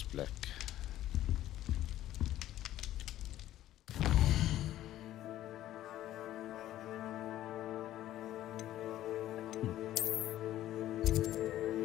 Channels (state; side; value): quieter; right; 13.5 dB